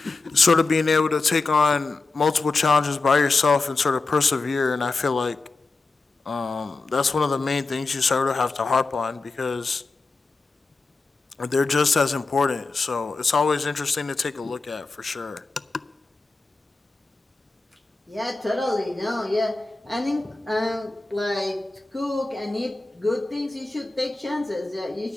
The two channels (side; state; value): right; quieter; 3.7 dB